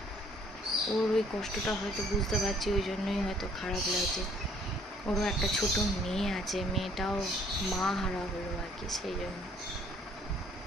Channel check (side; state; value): both; normal; correlation 0.61